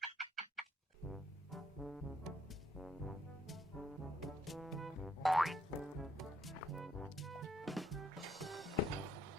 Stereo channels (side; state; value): both; normal; correlation 0.71